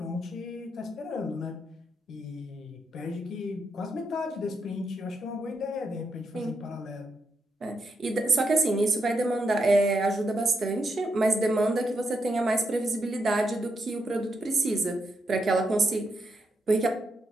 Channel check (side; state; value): both; normal; correlation 0.82